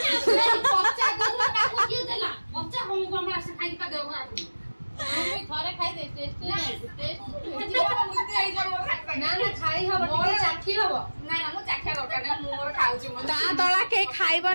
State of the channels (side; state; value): both; inverted; correlation -1.00